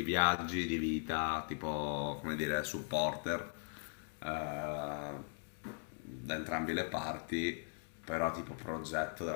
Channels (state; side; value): silent; right; 52 dB below the other